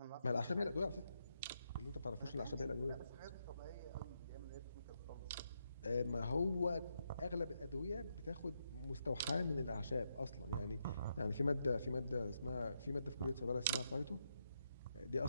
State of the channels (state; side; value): inverted; both; correlation -0.81